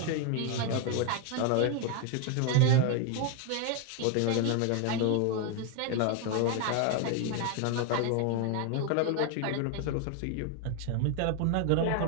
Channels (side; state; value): both; different; correlation 0.01